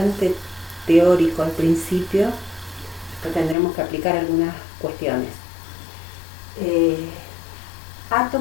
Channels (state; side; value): drops out; right; at 3.6 s